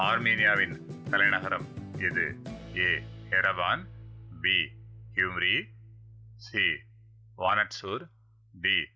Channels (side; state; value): both; identical; correlation 1.00